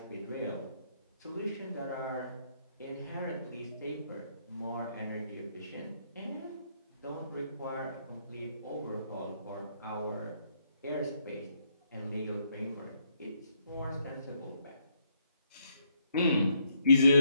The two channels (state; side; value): inverted; both; correlation -0.74